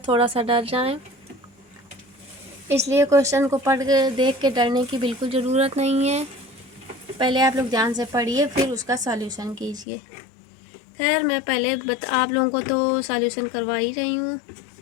थोड़ा सा डर जाएं, इसलिए क्वेश्चन को पढ़ के देख के डरने की बिल्कुल ज़रूरत नहीं है। पहले आप लोग ध्यान से पढ़िए, फिर उसका सॉल्यूशन कीजिए। खैर मैं पहले आप लोगों को तो सॉल्यूशन करवा ही रही हूँ,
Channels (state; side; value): drops out; right; at 9.9 s